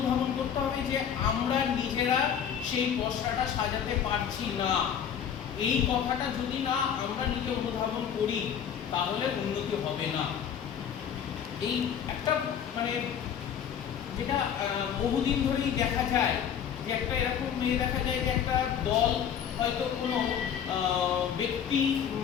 করতে হবে যে আমরা নিজেরা সেই পসরাটা সাজাতে পারছি না। এই কথাটা যদি না আমরা নিজে অনুধাবন করি তাহলে উন্নতি হবে না। এই একটা মানে যেটা বহুদিন ধরেই দেখা যায় যে একটা এরকম মেয়ে দেখা যায় যে একটা দল হয়তো কোনো ব্যক্তি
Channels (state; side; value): quieter; right; 8.4 dB